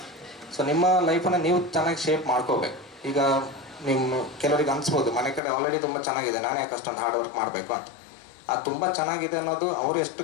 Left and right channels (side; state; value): right; drops out; at 5.4 s